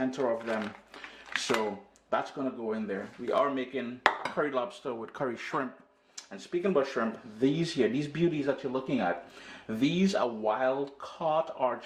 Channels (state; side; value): identical; both; correlation 1.00